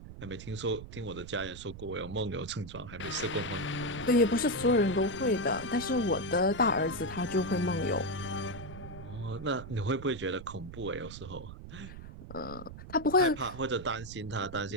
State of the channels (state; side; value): noise; right; rumble, 13 dB below the sound